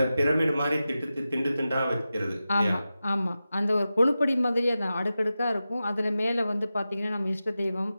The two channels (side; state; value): both; inverted; correlation -0.93